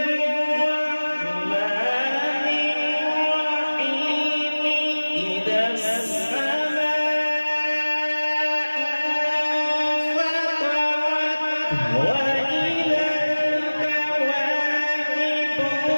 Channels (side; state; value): both; inverted; correlation -1.00